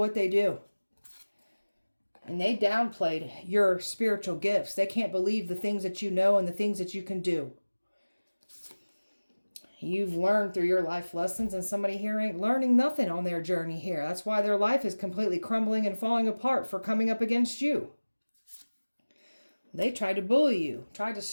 they do. And they downplayed your spiritual gifts. They can't believe the things that you know and the things that you can do. You've learned through your life lessons, and somebody here ain't learning nothing on their journey here. That's why their life is completely crumbling and falling apart for coming up against you. They tried to bully you, tried to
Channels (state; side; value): inverted; both; correlation -1.00